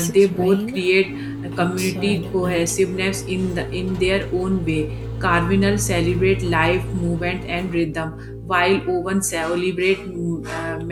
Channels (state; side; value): identical; both; correlation 1.00